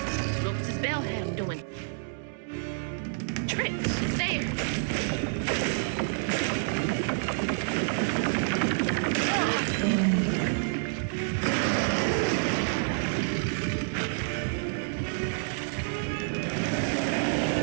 Lopez's bell had him doing tricks. There.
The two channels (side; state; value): left; silent; digital silence